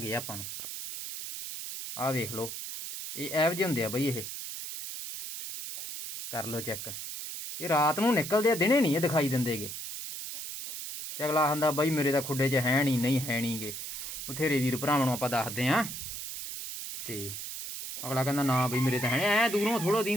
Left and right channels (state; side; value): noise; right; hiss, 7 dB below the sound